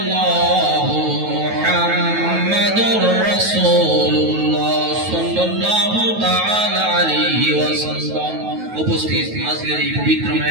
মুহাম্মাদুর রাসূলুল্লাহ সাল্লাল্লাহু তাআলা আলাইহি ওয়াসাল্লাম। উপস্থিত আজকের এই পবিত্র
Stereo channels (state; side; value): late; left; 9.3 ms